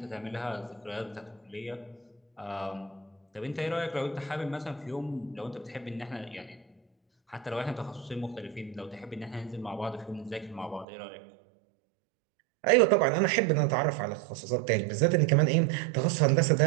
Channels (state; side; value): drops out; left; at 10.9 s